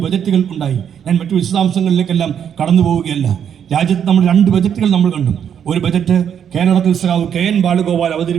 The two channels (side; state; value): left; quieter; 8.5 dB